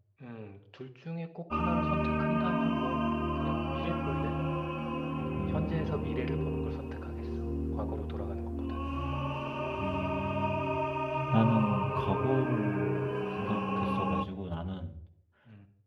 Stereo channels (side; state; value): both; identical; correlation 1.00